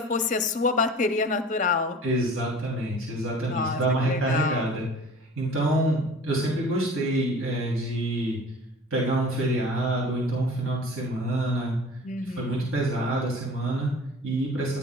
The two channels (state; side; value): normal; both; correlation 0.43